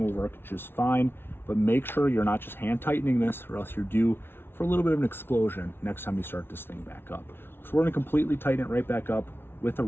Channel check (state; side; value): late; right; 0.11 ms